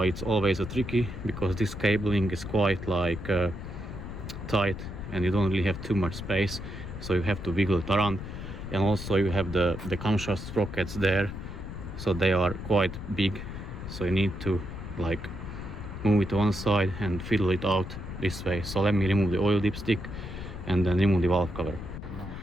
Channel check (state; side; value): noise; left; rumble, 9 dB below the sound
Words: it's always a tricky because this cabling is quite like tight and you don't really have too much space, so you have to wiggle it around. And also you have the camshaft sprockets there, so they are quite big, so you need to like move it to one side and fiddle it out this way. So let me remove the oil dipstick and then remove the valve cover.